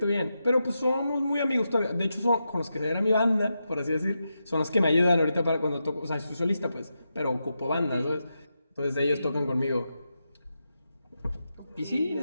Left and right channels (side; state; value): both; inverted; correlation -0.87